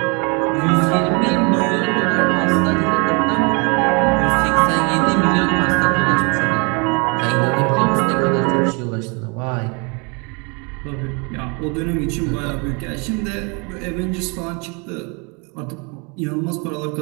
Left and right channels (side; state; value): left; quieter; 32.3 dB